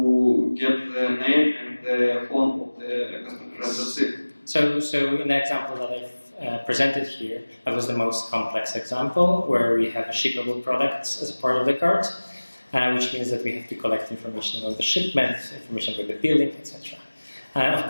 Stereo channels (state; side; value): inverted; both; correlation -1.00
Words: get the name and the phone of the customer, and that's it. So in the example that I've presented here, that was the most complex example where we have shippable products as a part of the cart, which means that we have to collect information about the shipment, information about the billing, etc.